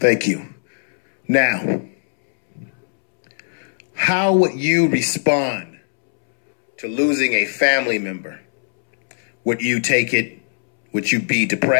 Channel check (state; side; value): silent; right; 67 dB below the other